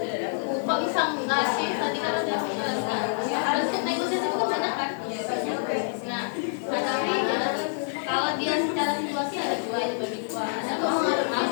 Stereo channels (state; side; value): silent; right; 60 dB below the other